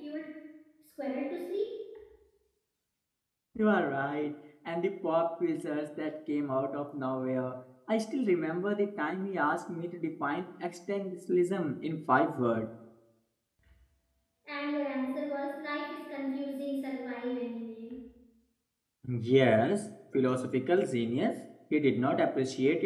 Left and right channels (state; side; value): identical; both; correlation 1.00